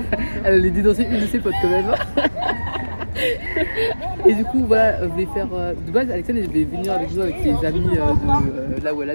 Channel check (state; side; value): inverted; both; correlation -1.00